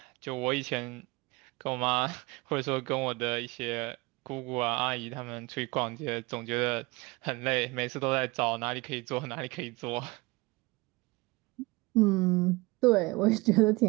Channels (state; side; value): quieter; left; 23.8 dB